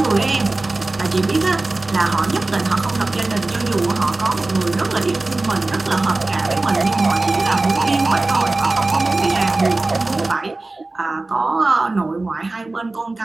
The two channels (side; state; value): left; quieter; 3.2 dB